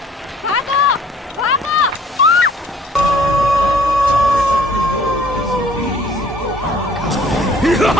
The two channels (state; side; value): normal; both; correlation 0.56